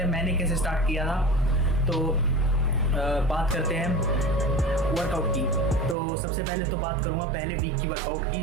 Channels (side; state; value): left; drops out; at 6.0 s